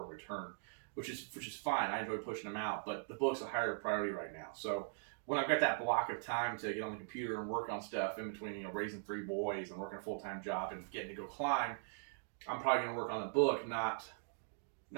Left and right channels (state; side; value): silent; left; digital silence